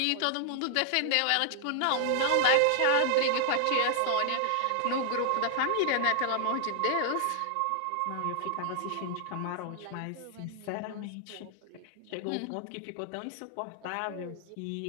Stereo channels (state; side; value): different; both; correlation 0.00